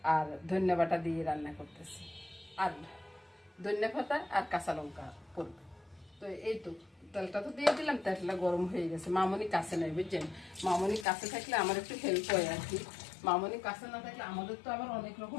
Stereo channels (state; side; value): drops out; right; at 11.1 s